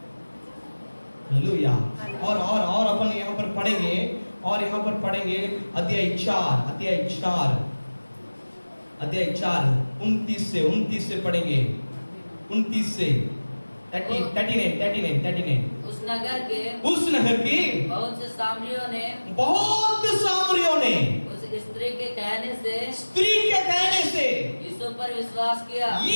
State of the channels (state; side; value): inverted; both; correlation -1.00